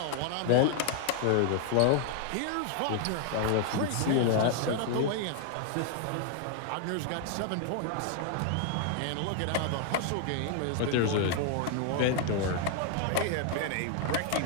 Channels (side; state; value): both; different; correlation 0.00